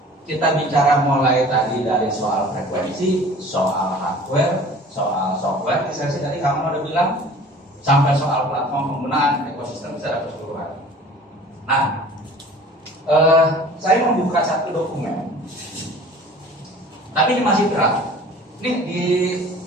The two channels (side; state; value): both; normal; correlation 0.46